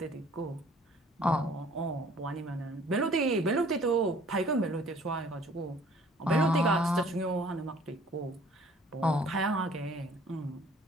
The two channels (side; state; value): both; normal; correlation 0.55